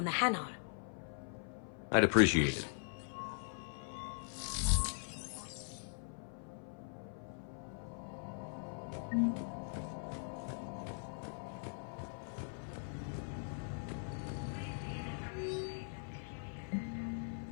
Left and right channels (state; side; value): silent; right; 51 dB below the other